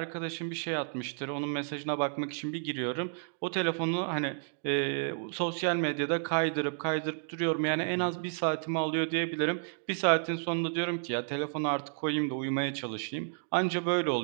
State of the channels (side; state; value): left; silent; digital silence